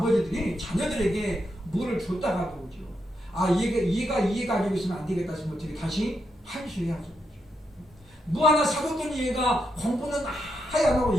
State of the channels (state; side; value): normal; both; correlation 0.82